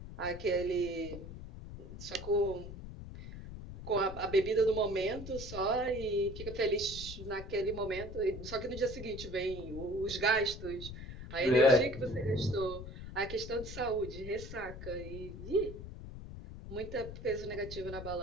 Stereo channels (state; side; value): noise; left; rumble, 10 dB below the sound